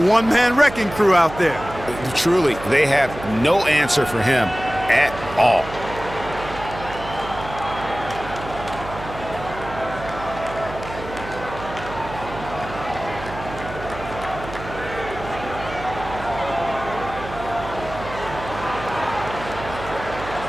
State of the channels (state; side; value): noise; right; hum, 12 dB below the sound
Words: wrecking crew out there. Truly, they have no answer for him at all.